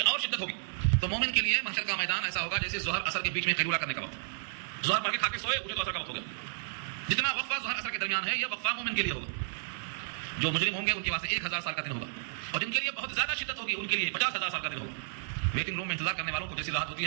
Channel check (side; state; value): left; silent; 56 dB below the other